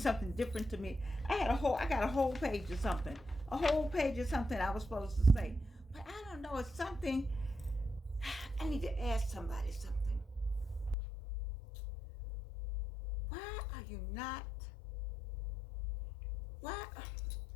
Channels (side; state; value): right; drops out; at 11.0 s